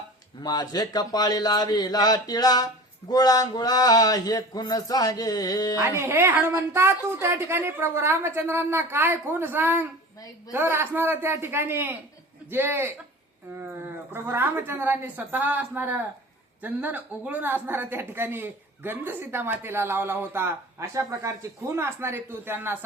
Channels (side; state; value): both; normal; correlation 0.38